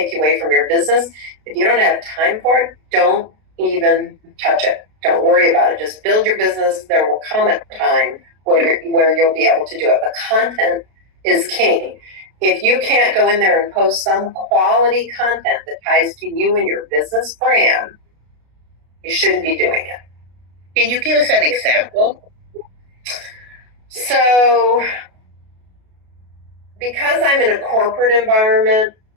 you away from your business. If you don't have time for it, don't even touch it. Don't worry about it. Just build your business. There will come a time where you'll be able to do it. But content is king. If you can't go in there and post some quality content that ties to you and your business brand, You shouldn't be doing it. Can you give us an example? So, because I'm in a corporate environment,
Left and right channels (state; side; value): late; left; 33 ms